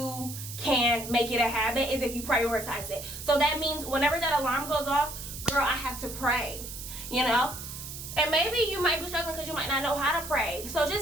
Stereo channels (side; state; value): right; noise; hiss, 10 dB below the sound